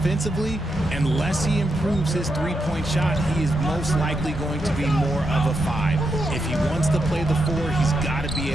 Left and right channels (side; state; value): both; normal; correlation 0.84